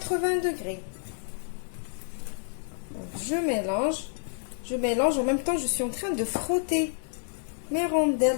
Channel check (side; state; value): right; silent; digital silence